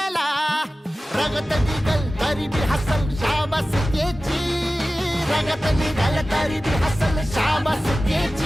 रगत निघल तरी बी हसल शाबास त्याची, रगत निघल तरी बी हसल शाबास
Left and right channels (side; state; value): both; normal; correlation 0.96